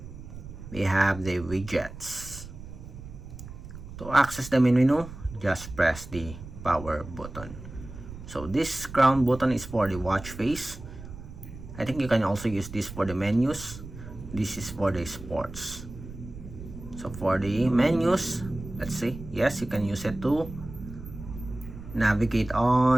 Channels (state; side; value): noise; right; rumble, 13 dB below the sound